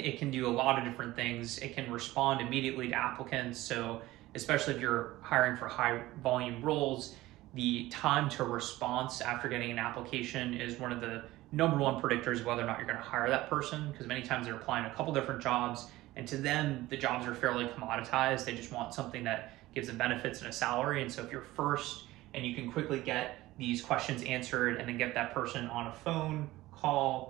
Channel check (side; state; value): left; quieter; 17.5 dB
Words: can do a lot of different things. It can respond immediately to applicants. So especially if you're hiring for high volume roles, the time to response after getting an application is one of the number one predictors of whether or not you're going to hire that person, because many times they're applying a couple different jobs, and to them, the jobs are fairly commoditized. They just want something that gives them benefits and a salary. And so if you're first and you can quickly get these questions answered and then get that person on a phone